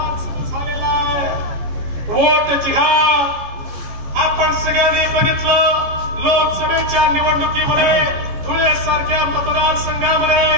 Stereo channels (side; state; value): left; late; 15 ms